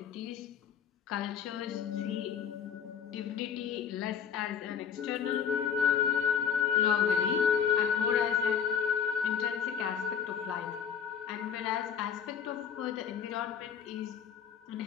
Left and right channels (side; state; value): right; quieter; 7.7 dB